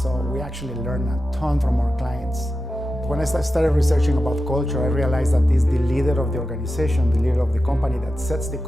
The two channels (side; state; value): both; normal; correlation 0.92